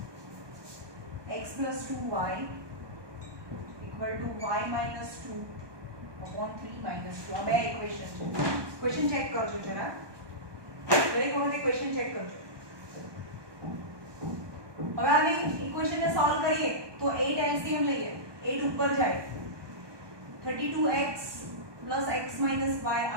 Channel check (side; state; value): left; late; 1.2 ms